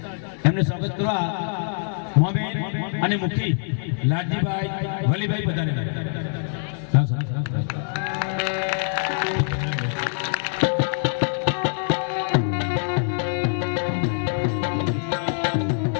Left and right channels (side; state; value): right; silent; 62 dB below the other